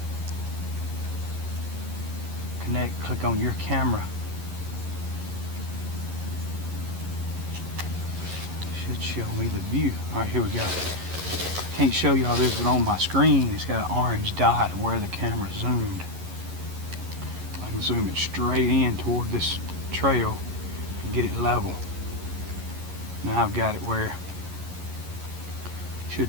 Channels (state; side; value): late; left; 11 ms